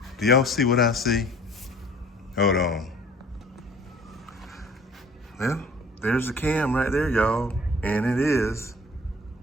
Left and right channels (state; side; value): normal; both; correlation 0.50